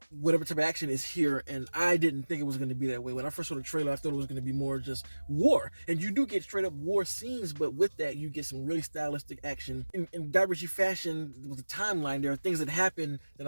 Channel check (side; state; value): both; inverted; correlation -1.00